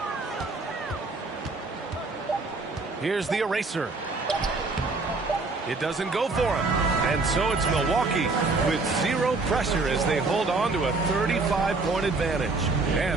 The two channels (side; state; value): left; quieter; 3.7 dB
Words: Here's the eraser. It doesn't go for him. And so it's Milwaukee with 0 pressure as they hold on to a 35-point advantage.